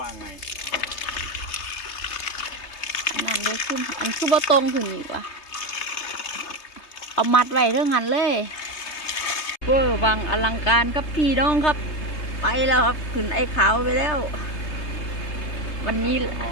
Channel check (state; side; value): late; right; 3.3 ms